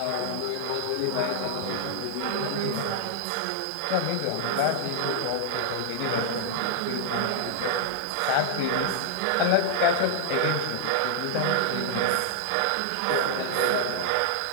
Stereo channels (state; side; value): different; both; correlation 0.00